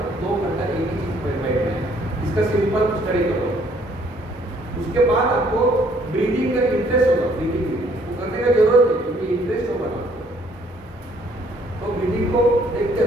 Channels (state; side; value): normal; both; correlation 0.63